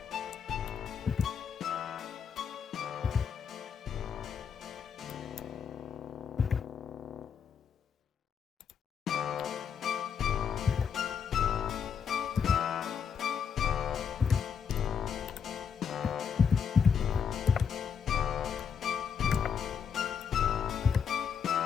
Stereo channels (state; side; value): quieter; right; 7.0 dB